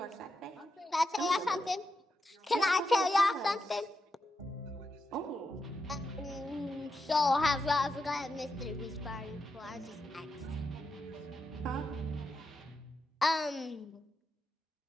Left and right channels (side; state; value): both; normal; correlation 0.86